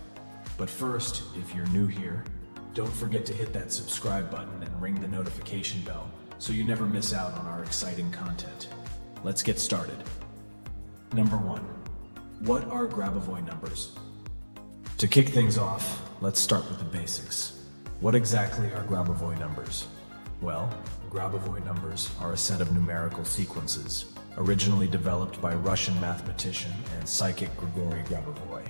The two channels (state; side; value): inverted; both; correlation -1.00